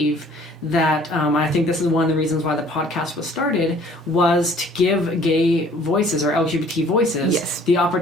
that I think this is one of the reasons why the podcast was started, was to give gay voices or LGBT voices the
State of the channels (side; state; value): both; normal; correlation 0.55